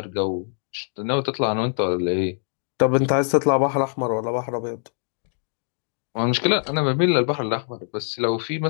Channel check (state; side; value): silent; right; digital silence